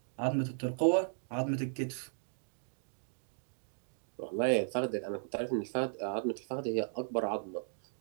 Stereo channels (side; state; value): left; silent; digital silence